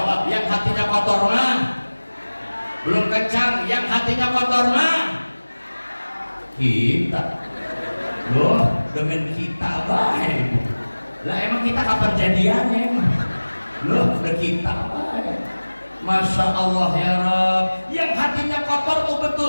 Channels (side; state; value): both; inverted; correlation -1.00